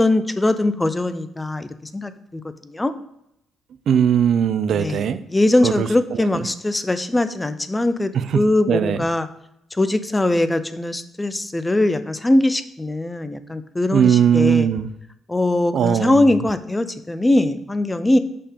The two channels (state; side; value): normal; both; correlation 0.86